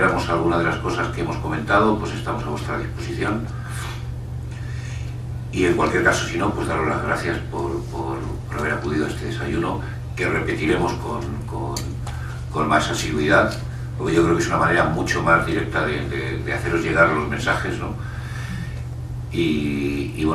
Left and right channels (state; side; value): identical; both; correlation 1.00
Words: alguna de las cosas que hemos comentado, pues estamos a vuestra disposición. Y en cualquier caso, si no, pues daros las gracias por haber acudido a este desayuno, que repetiremos con más asiduidad, porque yo creo que es una manera mucho más directa de haceros llegar los mensajes, ¿no? Y